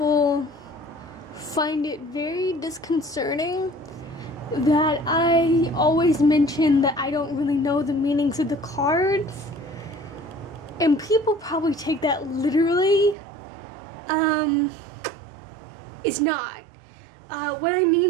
find it very disconcerting that I always mention that I don't really know the meanings of the cards, and people probably take that literally. It's not. What I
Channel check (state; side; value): drops out; left; at 13.2 s